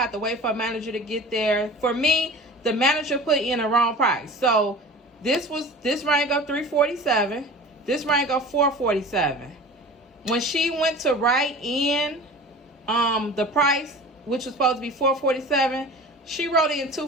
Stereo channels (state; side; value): normal; both; correlation 0.39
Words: to wait for a manager to get there. For me, the manager put in the wrong price. So this rang up $3.47. This rang up $4.47. When she went to write in the price, which was supposed to be $4.47, she wrote in